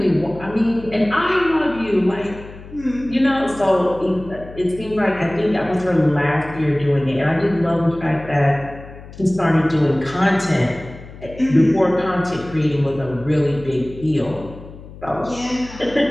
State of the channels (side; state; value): left; noise; hum, 16 dB below the sound